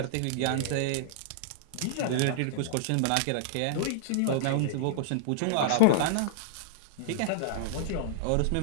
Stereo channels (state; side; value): different; both; correlation -0.02